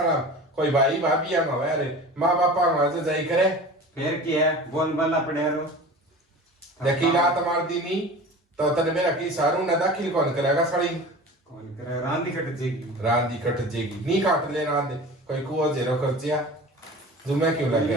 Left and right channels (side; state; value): both; normal; correlation 0.37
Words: कोई भाई भाभी हम हमारे माँ बापा हमारे जाई करे फिर की है बोल बल्ला पड़े रो देखी रात मार दी नी तो तने मेरा की सारू ना दाखिल कौन करेगा साड़ी कौन करे रांदी कट जेगी रांदी कट जेगी नी काट ले रांदे कोई कुओ जेरो कर जिया जुमे क्यों